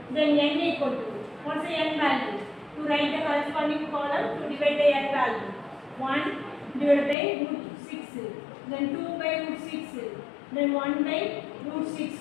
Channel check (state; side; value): drops out; right; at 7.2 s